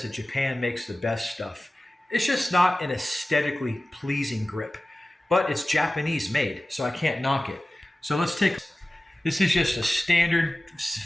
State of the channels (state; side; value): normal; both; correlation 0.96